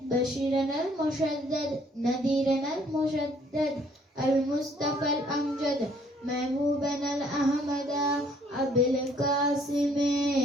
بشيرنا المشدد نذيرنا المشدد المصطفى الأمجد محبوبنا الأحمد أبي القاسم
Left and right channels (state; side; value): normal; both; correlation 0.62